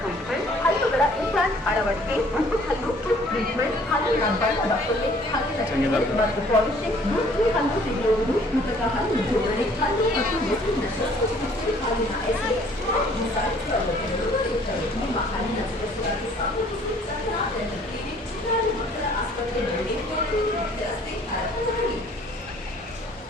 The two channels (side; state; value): both; normal; correlation 0.57